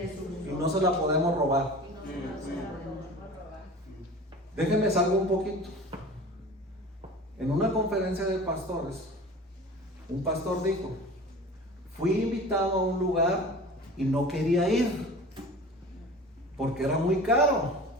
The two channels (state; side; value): normal; both; correlation 0.38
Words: Y no se la podemos robar. Déjenme salgo un poquito. En una conferencia de pastores, un pastor dijo: fui invitado a un lugar y no quería ir porque era muy caro